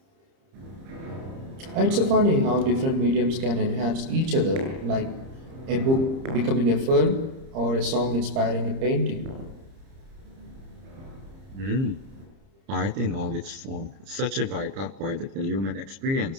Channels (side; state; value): left; late; 30 ms